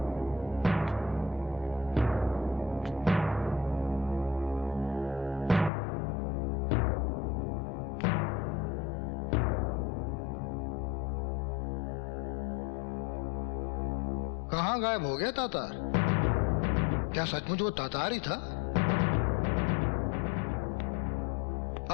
कहाँ गायब हो गया तातार? क्या सचमुच वो तातार ही था?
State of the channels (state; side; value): drops out; right; at 5.7 s